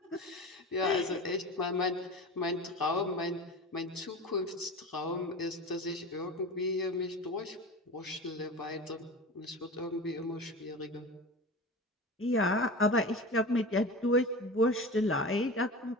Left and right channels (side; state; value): both; normal; correlation 0.31